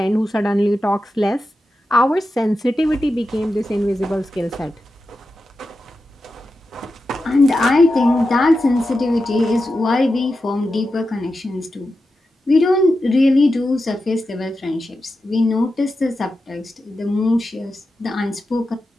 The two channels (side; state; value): both; normal; correlation 0.90